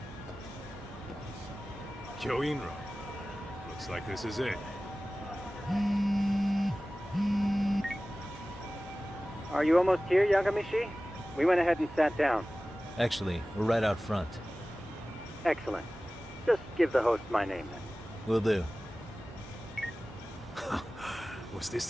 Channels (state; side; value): normal; both; correlation 0.97